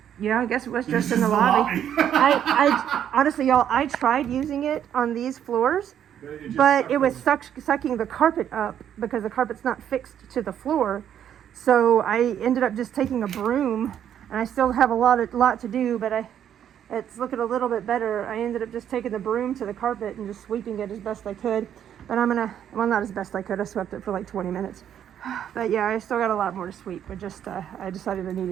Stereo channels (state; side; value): quieter; left; 9.7 dB